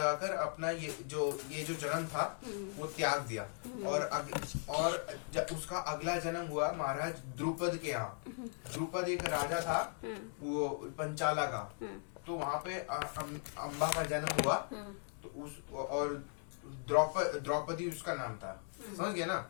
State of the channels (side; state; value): right; silent; 52 dB below the other